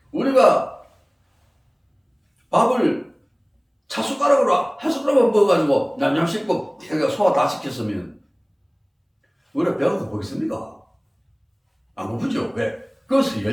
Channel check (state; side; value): identical; both; correlation 1.00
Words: 우리가 밥을 차숟가락으로 한 숟가락만 먹어가지고 냠냠 씹고 소화 다 시켰으면 우리가 배가 고프겠습니까? 안 고프죠? 왜? 그것을